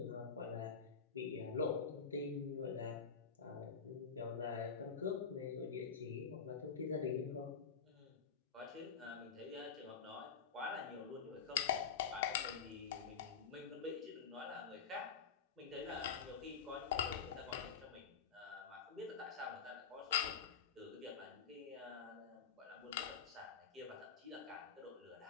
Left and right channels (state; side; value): quieter; right; 6.4 dB